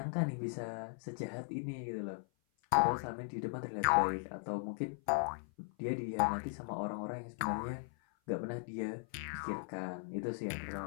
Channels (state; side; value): silent; right; 52 dB below the other